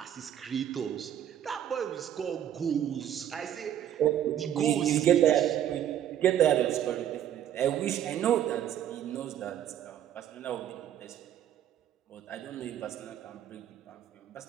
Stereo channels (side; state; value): left; quieter; 10.7 dB